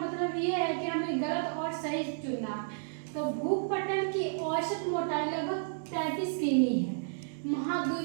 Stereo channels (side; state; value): left; silent; digital silence